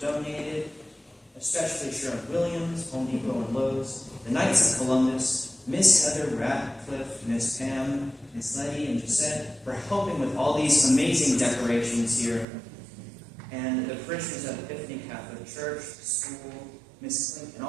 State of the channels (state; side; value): drops out; left; at 12.5 s